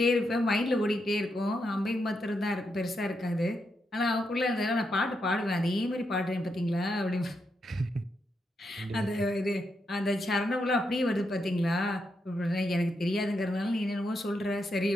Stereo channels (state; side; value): normal; both; correlation 0.82